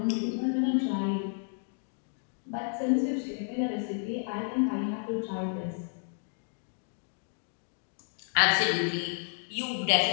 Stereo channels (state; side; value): silent; right; 57 dB below the other